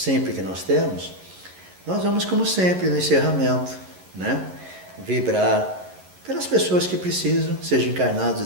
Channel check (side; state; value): left; late; 11 ms